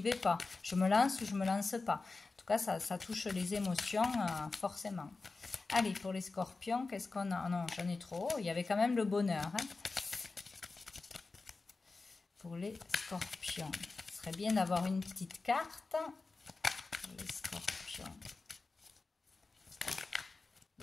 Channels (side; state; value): right; quieter; 3.8 dB